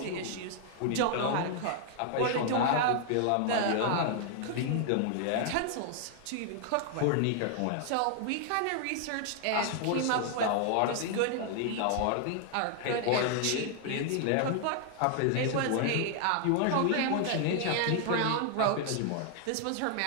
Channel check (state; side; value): different; both; correlation 0.00